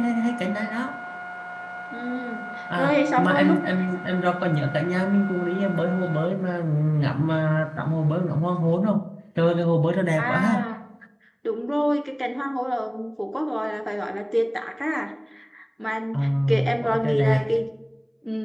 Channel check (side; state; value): both; identical; correlation 1.00